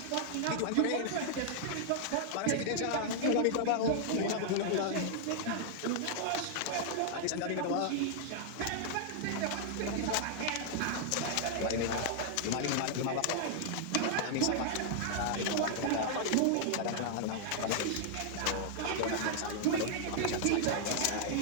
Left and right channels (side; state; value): both; different; correlation -0.01